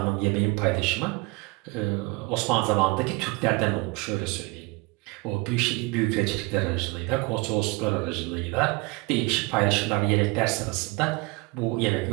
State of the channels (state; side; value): quieter; left; 25.9 dB